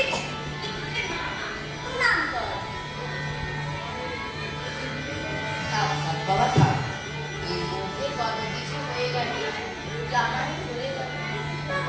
নাম কর। থাক থাক বাবা থাক, এর মধ্যে কত কিছু হয়ে গেল, জামাই চলে গেল।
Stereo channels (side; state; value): both; identical; correlation 1.00